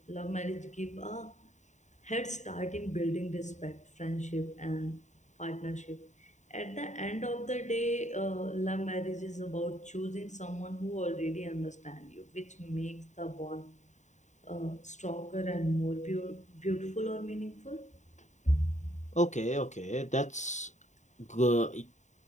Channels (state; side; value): late; right; 0.34 ms